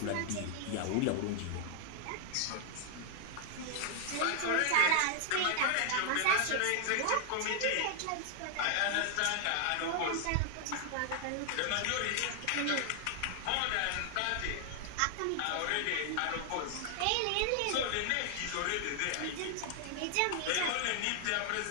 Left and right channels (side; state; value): both; different; correlation 0.00